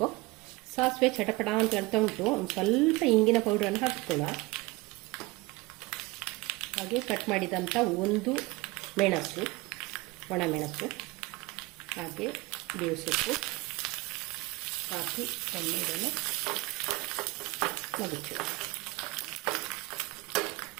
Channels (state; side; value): quieter; left; 22.4 dB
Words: ಸಾಸಿವೆ ಚಟಪಟ ಅಂತ ಹೇಳ್ತಾ ಉಂಟು. ಒಂದು ಸ್ವಲ್ಪ ಇಂಗಿನ ಪೌಡರನ್ನು ಹಾಕಿಕೊಳ್ಳೋ. ಹಾಗೆ ಕಟ್ ಮಾಡಿದಂಥ 1 ಮೆಣಸು, ಒಣ ಮೆಣಸು, ಹಾಗೆ ಬೇವು ಸೊಪ್ಪು ಹಾಕಿ ಒಮ್ಮೆ ಇದನ್ನು ಮಗುಚು.